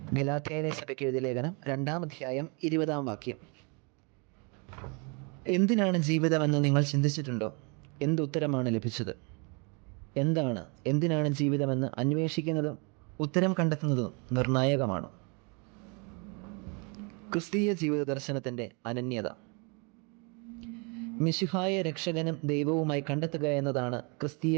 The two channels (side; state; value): left; quieter; 33.1 dB